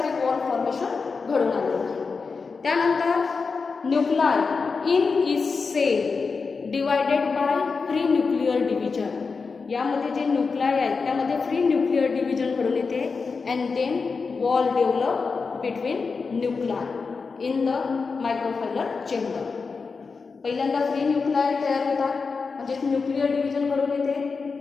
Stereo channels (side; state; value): right; quieter; 4.8 dB